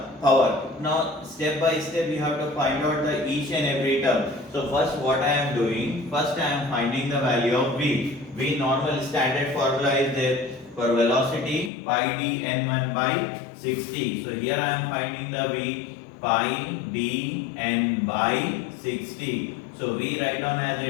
power. Now step by step you have to find out the each and every term. So first what I am doing? First I am finding the value of V. V normal standard formula is there for velocity pi d n1 by 60. So here I am finding the V pi d n by 60. So V write down as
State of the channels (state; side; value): drops out; right; at 11.7 s